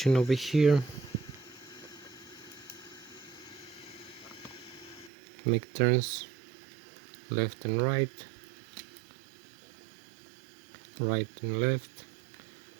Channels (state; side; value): drops out; left; at 5.1 s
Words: over here. Make turns left and right, right and left.